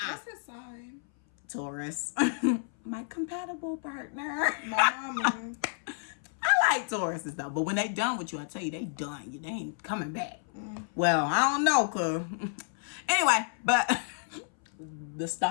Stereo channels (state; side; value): silent; right; 57 dB below the other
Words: his sign? Taurus. My compatible partner. My mama. I like Tauruses though, but when they done with you, I tell you, they done. They ain't coming back. Well, I don't know, cause anyway, but the